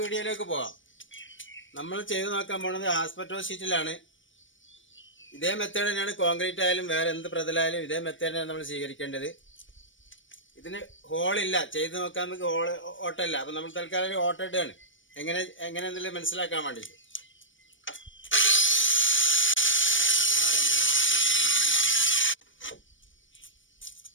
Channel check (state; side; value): late; right; 0.56 ms